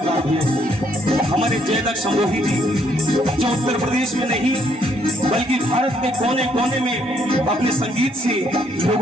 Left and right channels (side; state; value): both; normal; correlation 0.70